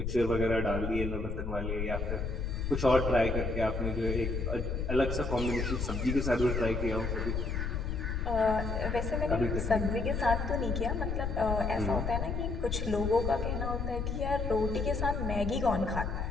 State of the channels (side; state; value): left; noise; rumble, 3 dB below the sound